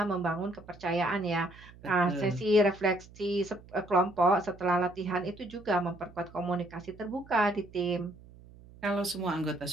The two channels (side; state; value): right; noise; hum, 21 dB below the sound